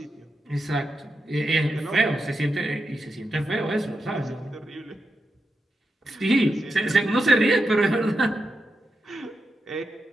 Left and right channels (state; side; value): normal; both; correlation 0.87